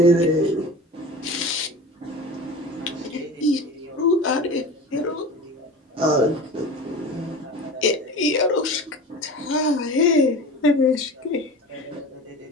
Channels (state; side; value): normal; both; correlation 0.33